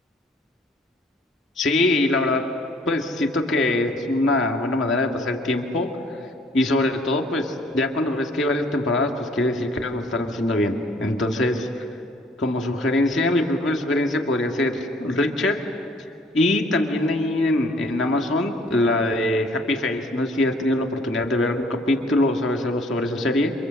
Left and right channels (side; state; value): both; normal; correlation 0.59